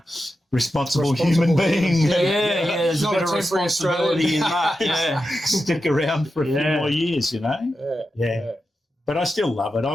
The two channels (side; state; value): both; normal; correlation 0.90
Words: responsible human being. There's a bit of responsibility in that. Yeah. Stick around for a few more years, you know. Yeah. But I still love it. I